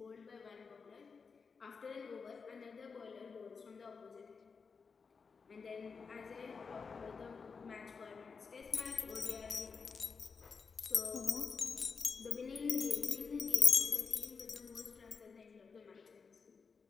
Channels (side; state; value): right; quieter; 5.3 dB